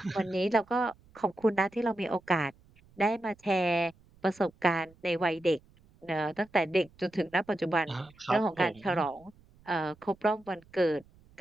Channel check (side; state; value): right; noise; rumble, 29 dB below the sound